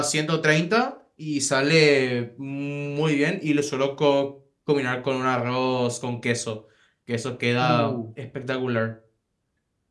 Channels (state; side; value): identical; both; correlation 1.00